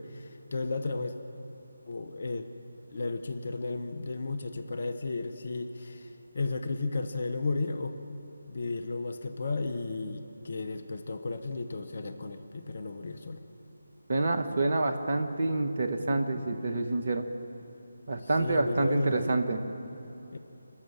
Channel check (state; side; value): inverted; both; correlation -0.89